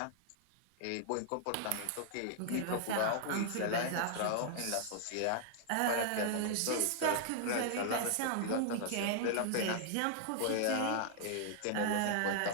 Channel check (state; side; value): different; both; correlation -0.01